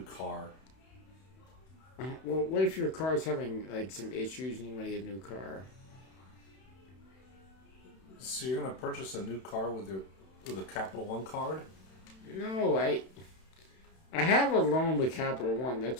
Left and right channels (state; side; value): late; right; 31 ms